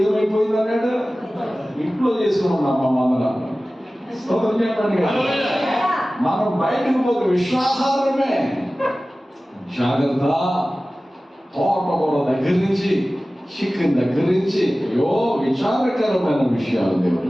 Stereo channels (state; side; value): normal; both; correlation 0.97